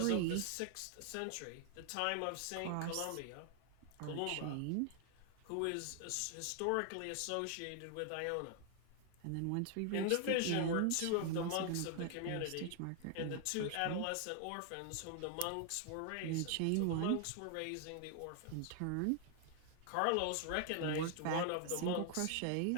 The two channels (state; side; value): different; both; correlation 0.00